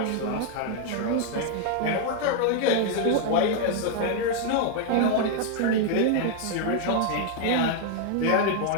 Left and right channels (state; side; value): different; both; correlation 0.00